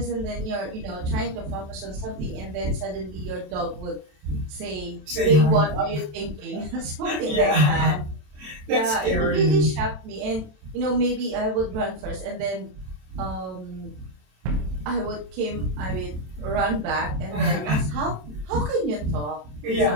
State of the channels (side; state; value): left; late; 27 ms